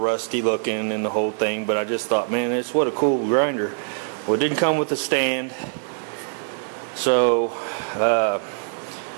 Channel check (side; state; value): left; silent; 55 dB below the other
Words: looking and the whole thing. But I just thought, man, it's what a cool grinder. Well, it didn't come with a stand, so